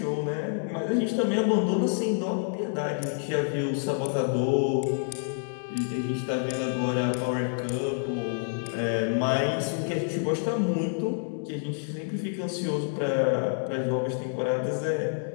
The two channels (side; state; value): right; silent; 59 dB below the other